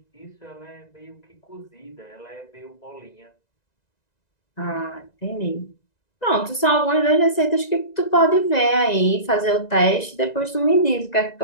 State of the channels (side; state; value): right; late; 1.9 ms